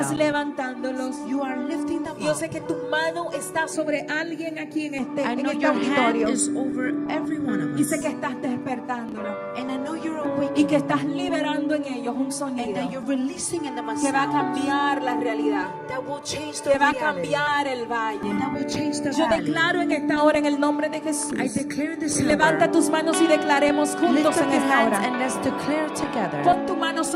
them. levantándolos. You are lifting them Yo up. sé que tu mano está sobre alguien aquí en I en know este your hand auditorio. is over every one of Y us. sé que estás despertándolo And I know you're y awakening que estás liberando en ellos un and sonido that you're releasing in them a que va a sound cambiar la realidad, that will change the que va a reality, cambiar el valle. that will change the Yo valley. declaro en esta hora en el nombre de Jesús. I declare this hour. Levanta tus manos y declaremos Lift juntos up en your esta hands hora. and let's declare together. Pon tu mano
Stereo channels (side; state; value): both; identical; correlation 1.00